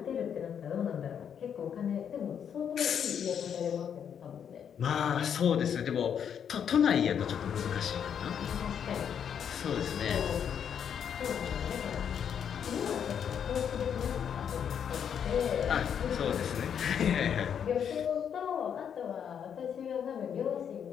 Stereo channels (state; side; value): quieter; right; 8.2 dB